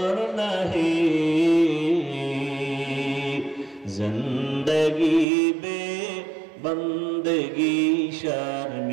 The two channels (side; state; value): left; drops out; at 5.2 s